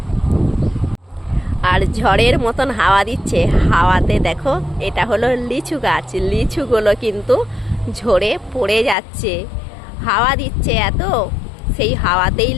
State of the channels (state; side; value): drops out; right; at 9.0 s